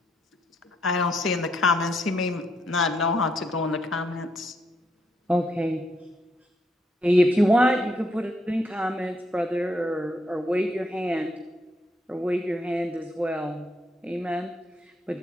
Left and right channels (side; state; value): both; normal; correlation 0.76